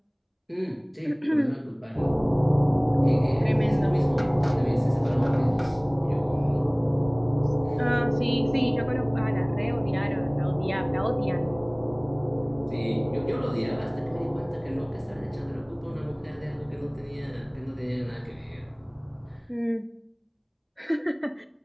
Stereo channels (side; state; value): both; identical; correlation 1.00